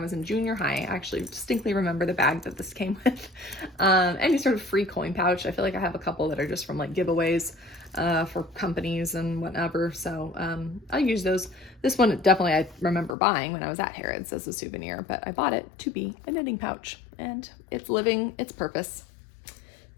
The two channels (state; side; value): drops out; right; at 13.2 s